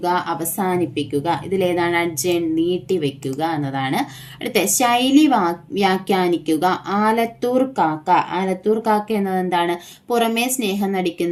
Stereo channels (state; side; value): identical; both; correlation 1.00